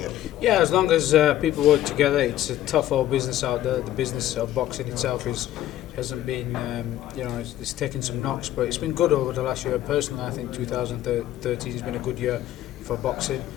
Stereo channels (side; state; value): right; quieter; 13.3 dB